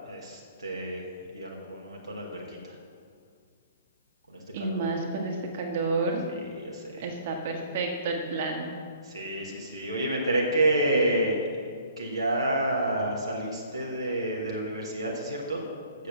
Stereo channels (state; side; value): inverted; both; correlation -0.56